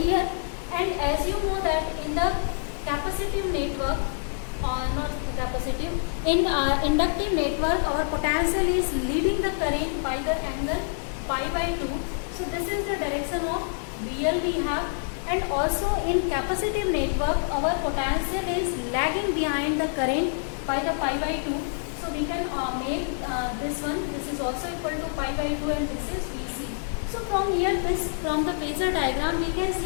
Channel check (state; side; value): silent; right; digital silence